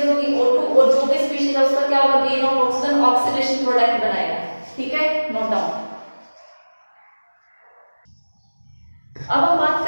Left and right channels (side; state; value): both; inverted; correlation -1.00